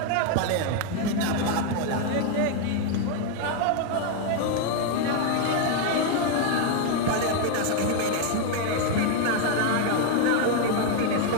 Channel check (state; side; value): different; both; correlation 0.00